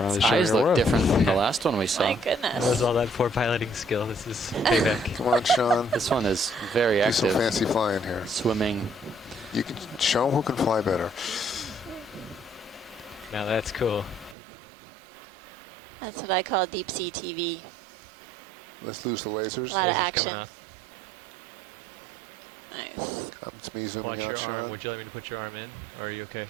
Its showing eyes your look worth. different from the last one we saw. My That was goodness. all that poor piloting skill. This is payback. Come on, Sean. This one is very Do some active. fancy flying here. Swimming. You can show them who can fly better. Now that's cool. That's what I call deep sea TV. Let's lose the lasers. Lot of Laser's action. coming off. Nice. It's me zooming Watch out, your Sean. arm. Would you like me to put your arm in? Or are you okay?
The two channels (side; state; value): left; drops out; at 14.4 s